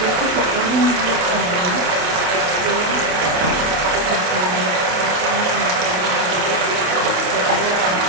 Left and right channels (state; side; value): late; left; 28 ms